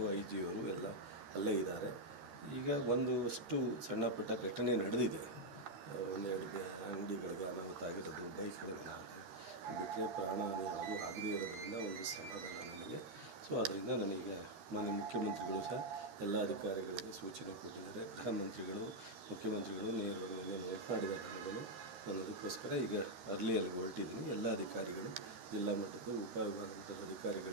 IG ಅವರು ಎಲ್ಲ ಅಲ್ಲೇ ಇದ್ದಾರೆ. ಈಗ ಒಂದಷ್ಟು ಸಣ್ಣ ಪುಟ್ಟ ಘಟನೆ ನಡೆದಿದೆ. ಒಂದೆರಡು ಅಂಗಡಿಗಳಿಗೆ ಅನಾಹುತ ಆಗಿರೋದು, ಬೈಕ್ಗಳಿಗೆ ಬಿಟ್ಟರೆ ಪ್ರಾಣಹಾನಿ ಯಾವುದೂ ಆಗದೇ ಇರೋದ್ರಿಂದ ಒಂದು ಸಮಾಧಾನ ನನಗೆ. ಸೊ ಅದರಿಂದ ನನಗೆ ಮಾನ್ಯ ಮುಖ್ಯಮಂತ್ರಿಗಳು ಸಹ ಎಲ್ಲ ಅಧಿಕಾರಿಗಳಿಗೆ ಸೂಚನೆ ಕೊಟ್ಟಿದ್ದಾರೆ. ಗೃಹ ಮಂತ್ರಿಗಳು, ಮುಖ್ಯಮಂತ್ರಿಗಳು ನೇರವಾಗಿ ಮಾತನಾಡಿದ್ದಾರೆ ನನಗೂ. ನಾನು ಅದಕ್ಕೋಸ್ಕರ ಈಗ ಅರ್ಲಿಯಲ್ಲಿ ಹೊರಟಿದ್ದೀನಿ. ಎಲ್ಲ ಅಧಿಕಾರಿಗಳು, ಜಿಲ್ಲಾ ಮಟ್ಟದ ಉಪವಿಭಾಗದ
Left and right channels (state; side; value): late; left; 13 ms